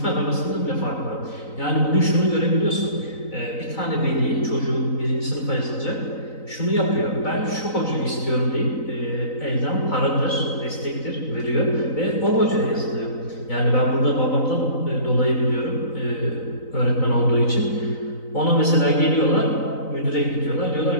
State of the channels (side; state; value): right; late; 3.9 ms